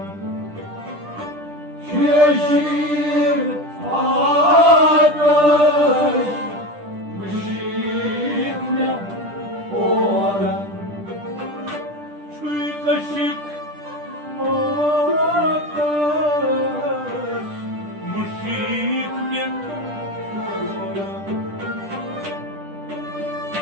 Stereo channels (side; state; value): left; late; 10 ms